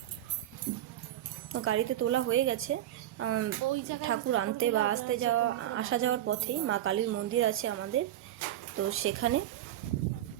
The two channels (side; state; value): left; quieter; 12.5 dB